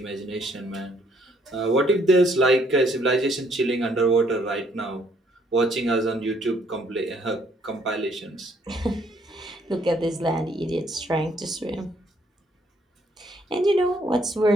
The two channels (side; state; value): both; normal; correlation 0.66